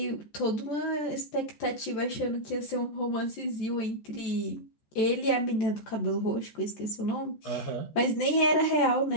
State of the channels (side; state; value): right; late; 14 ms